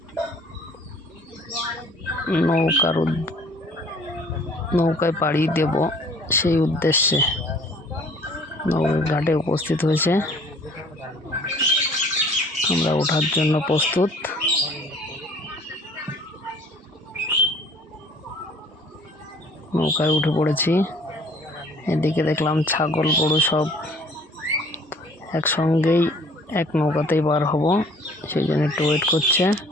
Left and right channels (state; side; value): normal; both; correlation 0.53